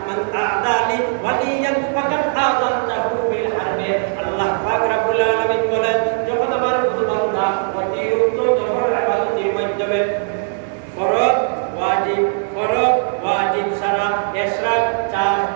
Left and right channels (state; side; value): silent; left; 60 dB below the other